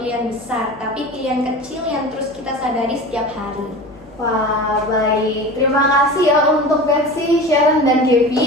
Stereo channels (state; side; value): noise; left; hum, 25 dB below the sound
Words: besar, tapi pilihan kecil yang terus kita sadari setiap hari. Wah, baik. Terima kasih ya untuk Betsy, Sharon, dan